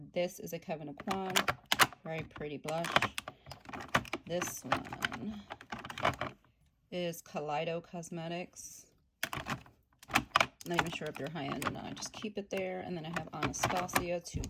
This is a Kevyn Aucoin, very pretty blush. This one is Kaleido Cosmetics. Not even sure if they're high-end or not. I just keep it there. And then I have Anastasia, two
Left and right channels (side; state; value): both; identical; correlation 1.00